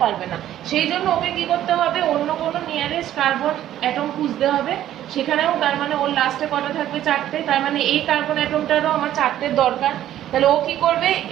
পারবে না। সেই জন্য ওকে কি করতে হবে, অন্য কোনো নিয়ারেস্ট কার্বন অ্যাটম খুঁজতে হবে। সেখানেও তার মানে ওর লাস্টে কটা থাকবে? 4টে। তার মানে এই কার্বন অ্যাটমটারও আমার 4টের দরকার। তাহলে ও কি করবে,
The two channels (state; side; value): quieter; left; 12.2 dB